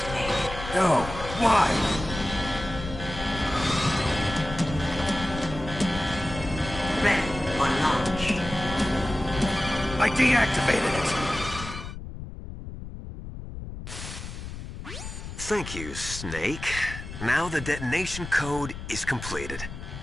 No, why? Ready for launch. I deactivated it. Thank you, Snake. Now the detonation code is completed.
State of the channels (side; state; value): left; noise; rumble, 10 dB below the sound